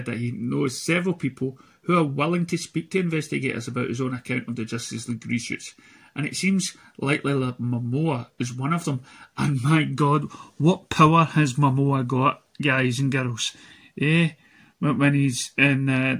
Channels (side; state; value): both; identical; correlation 1.00